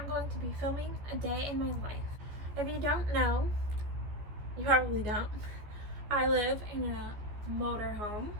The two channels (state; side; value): late; left; 14 ms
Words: going to be filming a day in my life. If you don't know, you probably don't, I live in a motorhome,